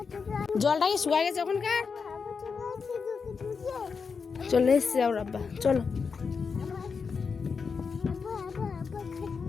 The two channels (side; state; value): right; quieter; 5.4 dB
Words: জলটা কি শুকায় গেছে ওখানকার? চলে এসছে ওর আব্বা, চলো।